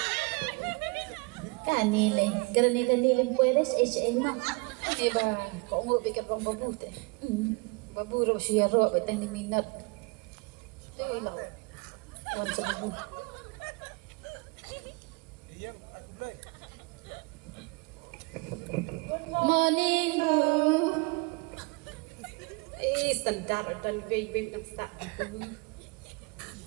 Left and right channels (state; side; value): quieter; left; 28.4 dB